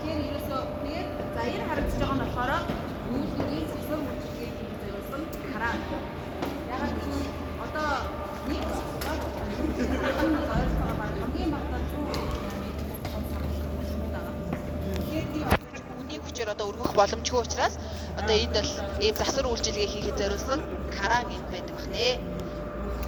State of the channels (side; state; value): both; identical; correlation 1.00